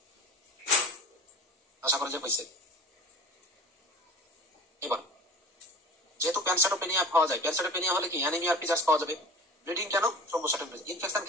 আশা করা যায় হয়েছে। এবার যেহেতু প্যানসাইটোপেনিয়া পাওয়া যায়, প্যানসাইটোপেনিয়া হলে কি অ্যানিমিয়ার ফিচার্স পাওয়া যাবে। ব্লিডিং কেন? থ্রম্বোসাইটোপেনিয়া। ইনফেকশন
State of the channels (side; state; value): both; normal; correlation 0.39